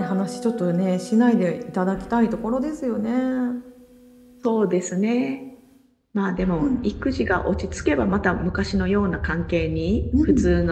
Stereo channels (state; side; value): identical; both; correlation 1.00